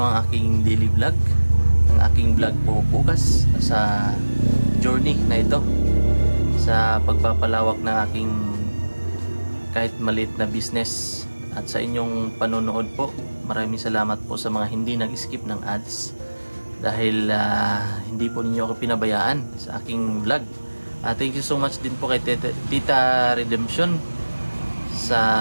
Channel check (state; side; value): inverted; both; correlation -1.00